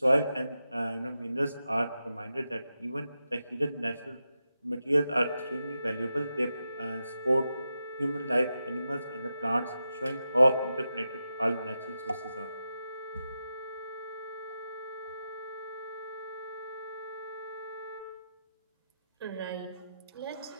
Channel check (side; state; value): both; inverted; correlation -0.89